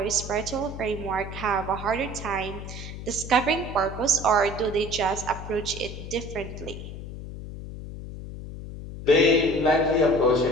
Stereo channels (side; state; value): left; noise; hum, 10 dB below the sound